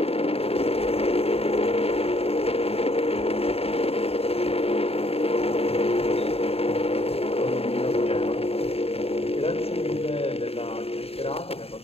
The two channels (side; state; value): right; late; 0.29 ms